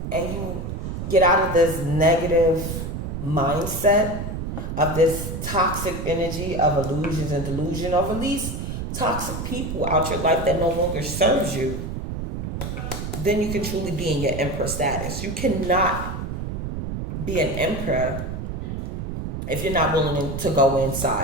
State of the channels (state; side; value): noise; right; rumble, 5 dB below the sound